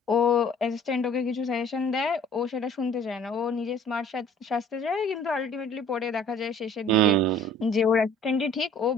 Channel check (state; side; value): normal; both; correlation 0.52